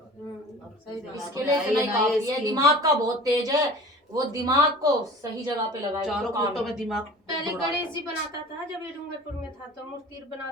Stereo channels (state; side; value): normal; both; correlation 0.41